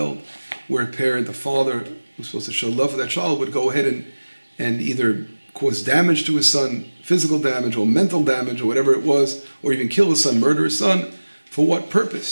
where a parent, the father, who's supposed to show love for that child, would go ahead and either cause damage to his son, physical damage or mental damage or whatever it was, or even kill his son, murder his son. For what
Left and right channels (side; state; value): both; inverted; correlation -1.00